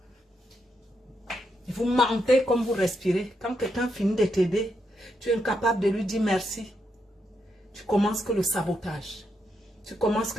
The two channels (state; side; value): normal; both; correlation 0.81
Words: Et vous mentez comme vous respirez. Quand quelqu'un finit de t'aider, tu es incapable de lui dire merci. Tu commences que le sabotage. Tu commences